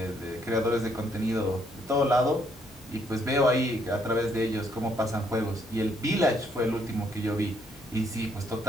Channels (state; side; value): normal; both; correlation 0.70